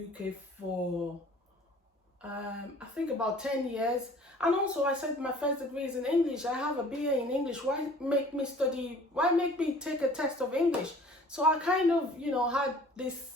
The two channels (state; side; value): normal; both; correlation 0.50